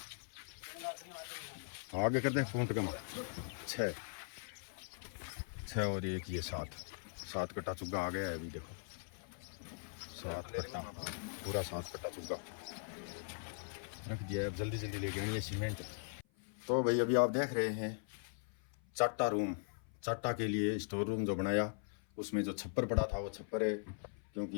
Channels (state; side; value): silent; right; 51 dB below the other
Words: आगे कर दे फूंट कमा 6 और एक ये 7 कट्टा चुग्गा आ गया है अभी देखो, 7 कट्टा पूरा 7 कट्टा चुग्गा रख दिया है। अब जल्दी जल्दी लेके आनी है सीमेंट। तो भाई अभी आप देख रहे हैं चाटा रूम, चाटा के लिए स्टोर रूम जो बनाया, उसमें जो छप्पर पड़ा था वो छप्पर है